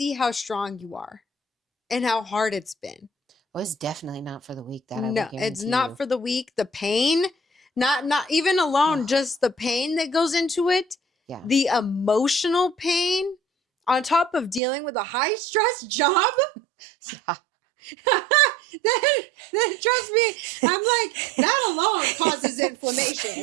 how strong you are and how hard it's been. Well, it's definitely not for the weak. That No, I will it's guarantee not you. for the weak. The pain, not even alone, just the pain that goes into it. Yeah. The emotional pain on top of dealing with a high stress job. then trust me, I'm like, that alone causes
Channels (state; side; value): drops out; left; at 14.6 s